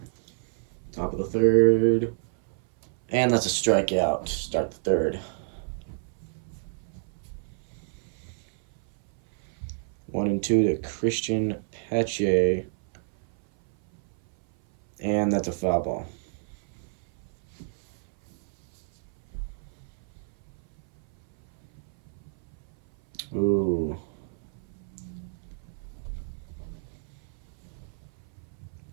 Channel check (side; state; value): left; silent; 57 dB below the other